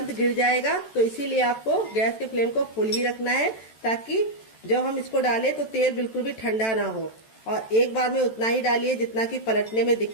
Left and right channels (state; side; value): late; right; 14 ms